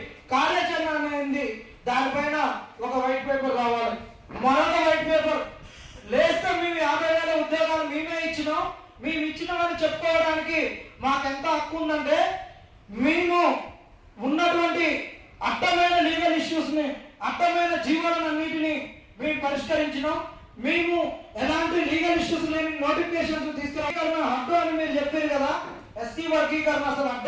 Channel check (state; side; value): identical; both; correlation 1.00